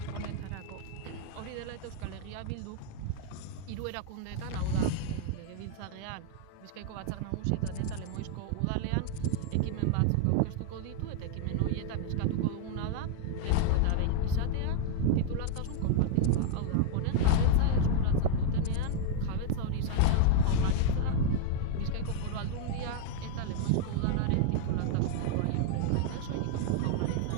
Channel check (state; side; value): different; both; correlation 0.00